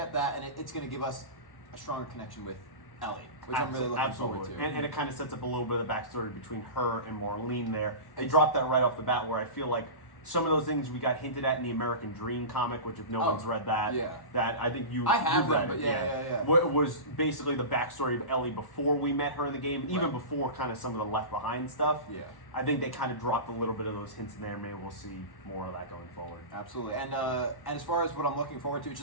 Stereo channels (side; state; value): right; late; 1.1 ms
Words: that, and it's going to give us a stronger connection with Ellie, which I'm really looking forward to. And it kind of sets up a little bit of the backstory between her and Marlene there. They dropped that right off the bat, where I feel like some of those things we got hinted at in the American Dream comic, which if no one's read that, that I think you I have read them, it. but yeah. Was basically the backstory of Ellie before we met her in the game, even before kind of some of the Left Behind stuff. Yeah. I think they kind of dropped a little bit of those hints in there. Maybe we'll see more of that going forward. Absolutely. And as far as what I'm looking forward to, it's